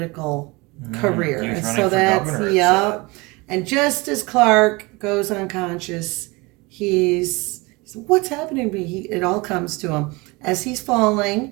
career. He was And running so for that's, governor, it yep. And just as Clark goes unconscious, he's what's happening to me? It all comes to him. As he's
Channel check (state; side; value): quieter; left; 25.0 dB